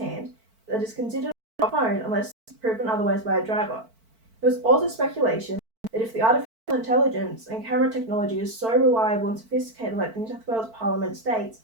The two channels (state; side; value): late; left; 4.5 ms